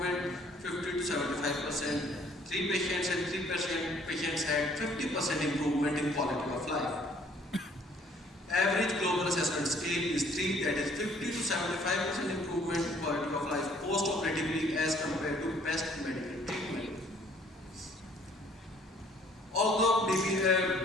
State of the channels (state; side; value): normal; both; correlation 0.59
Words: 50 to 75%. 3 patients and 3 patients had 50% improvement in quality of life. Average global assessment scale is 3, that is 50 to 75% improvement improvement in quality of life post-operatively as compared to best medical treatment. Although